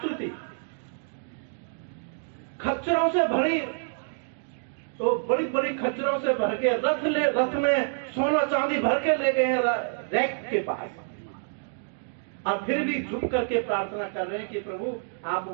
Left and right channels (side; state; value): left; silent; digital silence